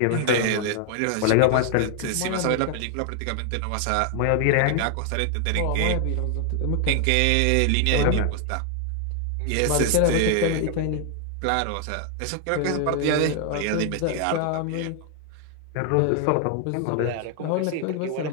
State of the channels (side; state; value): both; different; correlation 0.00